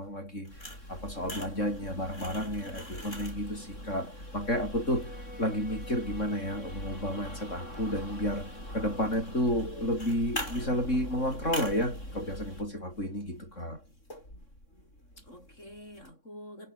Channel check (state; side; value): late; right; 3.6 ms